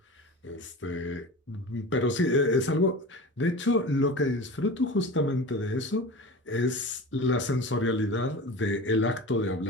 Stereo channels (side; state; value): both; normal; correlation 0.32